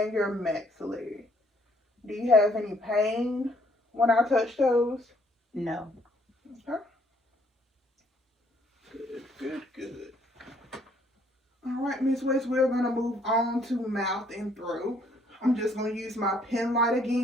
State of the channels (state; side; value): normal; both; correlation 0.65